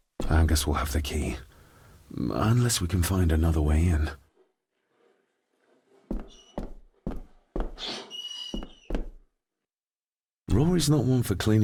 I guess we'll have the key. Unless we can find another way in. Rory's not one for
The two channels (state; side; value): identical; both; correlation 1.00